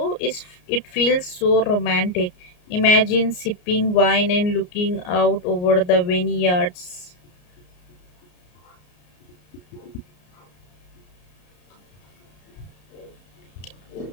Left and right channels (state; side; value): late; right; 33 ms